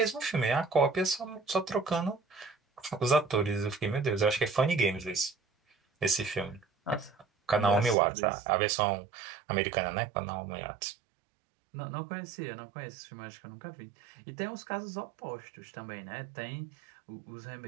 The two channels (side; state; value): left; drops out; at 8.0 s